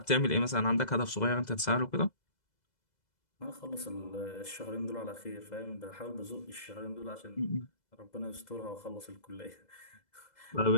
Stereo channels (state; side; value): late; right; 2.0 ms